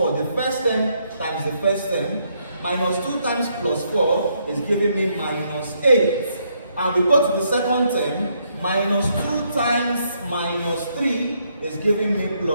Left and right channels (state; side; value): inverted; both; correlation -0.74